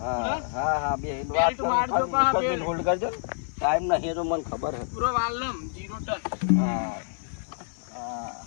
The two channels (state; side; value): silent; right; 59 dB below the other